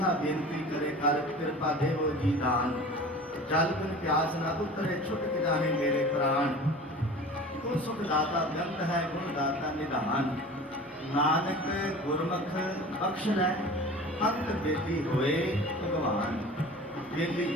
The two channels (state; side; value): normal; both; correlation 0.39